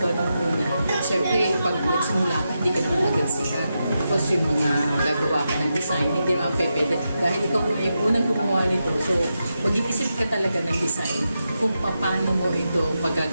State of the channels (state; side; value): inverted; both; correlation -0.87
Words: nung una, syempre pag nagsimula ka, hindi ka naman agad sikat. Tapos yung mga gagawa ka ng design, hindi naman pwede. Dahil ikaw nga yung unang gumawa nito, so mag-iisip ka talaga ng design kung paano mo ito